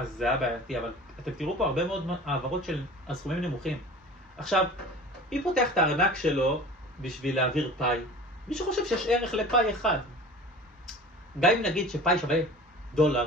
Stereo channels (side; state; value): both; normal; correlation 0.40